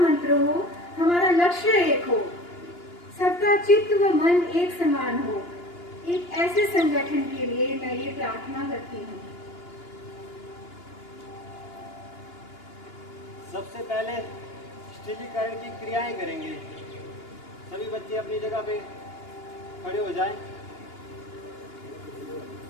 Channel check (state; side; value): late; right; 2.9 ms